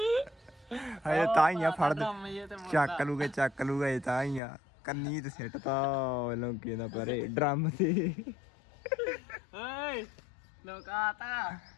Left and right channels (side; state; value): right; drops out; at 4.4 s